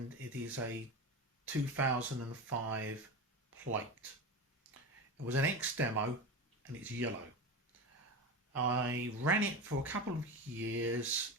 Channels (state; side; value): normal; both; correlation 0.24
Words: it is a 2005 plate. It was an X demo and it's yellow. I ran it for a couple of years,